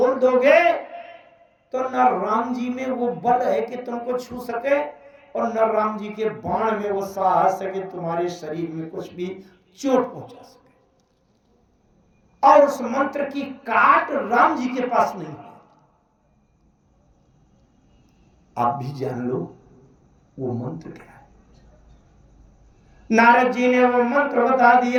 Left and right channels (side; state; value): both; identical; correlation 1.00